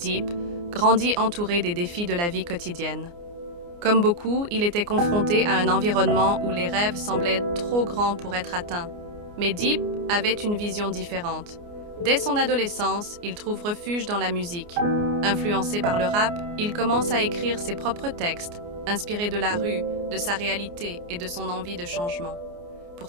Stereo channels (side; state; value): left; late; 29 ms